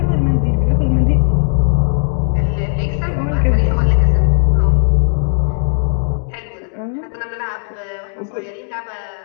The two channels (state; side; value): silent; right; digital silence